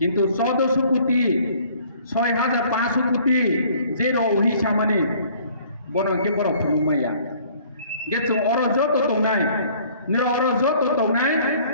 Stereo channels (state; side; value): inverted; both; correlation -0.56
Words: 1400 কোটি 6500 কোটি যে রহি সামানি বড়কে বড় ফুলুমাইয়া গেছো অর যত তঙ্গাই নির অর যত তঙ্গাই